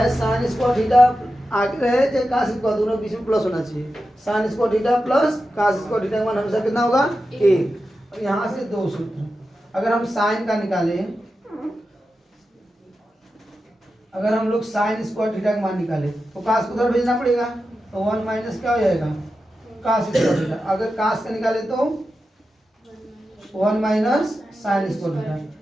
साइन स्क्वायर थीटा आगे रहे चाहे कास स्क्वायर, दोनों बीच में प्लस होना चाहिए। Sine square theta plus cos square theta का मान हमेशा कितना होगा 1। और यहाँ से 2 सूत्र, अगर हम साइन का निकालें, अगर हम लोग साइन स्क्वायर थीटा का मान निकालें तो कास को उधर भेजना पड़ेगा, तो 1 माइनस क्या हो जाएगा कास स्क्वायर थीटा। अगर कास का निकाले तो 1 माइनस साइन स्क्वायर थीटा।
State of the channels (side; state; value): both; normal; correlation 0.91